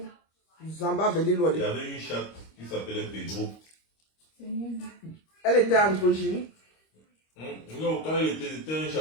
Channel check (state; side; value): late; right; 25 ms